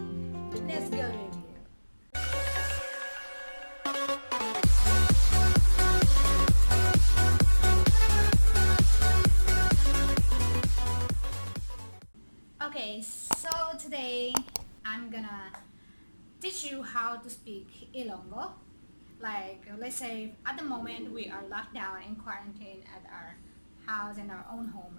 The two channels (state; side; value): inverted; both; correlation -1.00